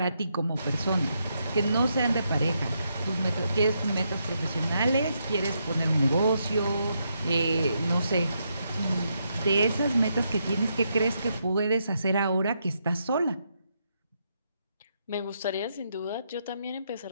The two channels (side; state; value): both; inverted; correlation -0.79